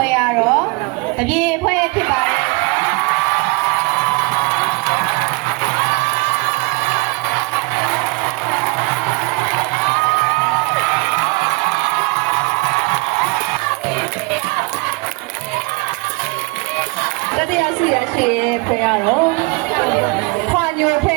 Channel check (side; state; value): left; quieter; 28.3 dB